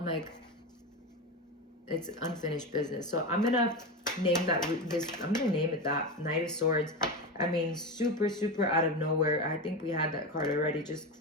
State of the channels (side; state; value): both; normal; correlation 0.19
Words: like, it's unfinished business. So I'm gonna name that I'm gonna name it that, Knight of Swords. I mean, super out of nowhere. I think we had that card already.